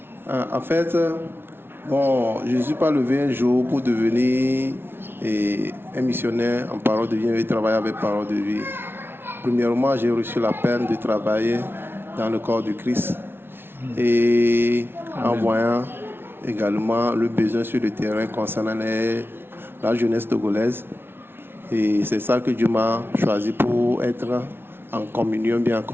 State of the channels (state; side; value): late; left; 0.11 ms